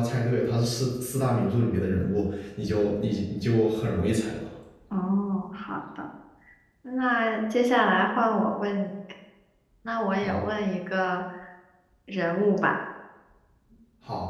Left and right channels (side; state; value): both; identical; correlation 1.00